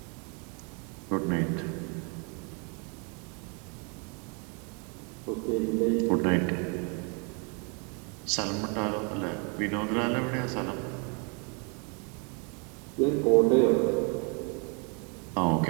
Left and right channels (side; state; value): left; quieter; 35.1 dB